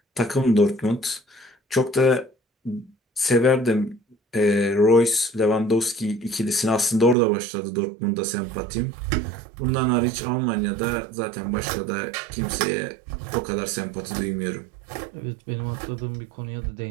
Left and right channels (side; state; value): left; drops out; at 7.2 s